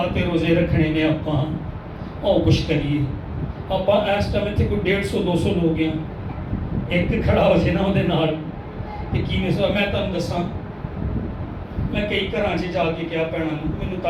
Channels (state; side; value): identical; both; correlation 1.00